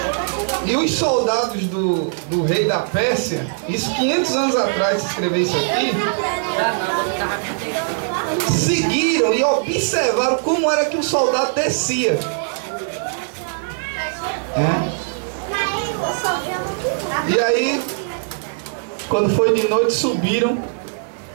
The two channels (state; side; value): silent; left; 61 dB below the other